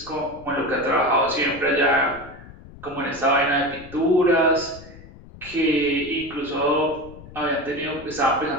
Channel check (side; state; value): left; noise; rumble, 18 dB below the sound